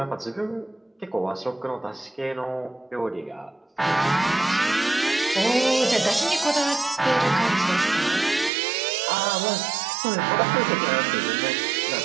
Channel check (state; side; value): drops out; left; at 8.5 s